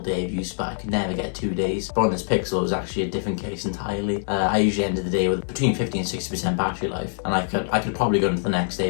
day of use, but I could never get 2 days. But on this Pixel, it was actually a different case entirely. I usually ended the day with between 50 and 60% battery life, and I could probably go into the next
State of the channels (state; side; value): silent; right; digital silence